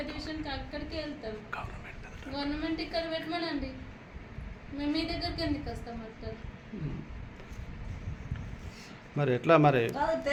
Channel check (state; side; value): identical; both; correlation 1.00